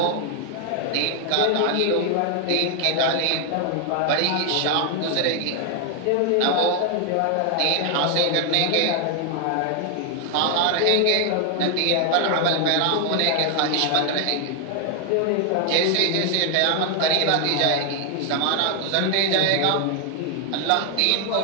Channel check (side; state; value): both; different; correlation 0.00